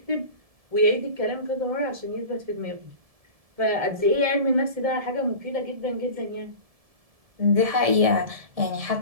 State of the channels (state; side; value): late; left; 1.7 ms